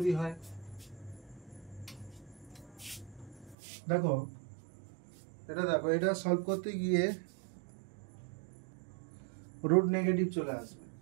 হয়, দেখো এটা সলভ করতে গিয়ে রুট নেগেটিভ চলে আসবে,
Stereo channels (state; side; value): drops out; left; at 3.6 s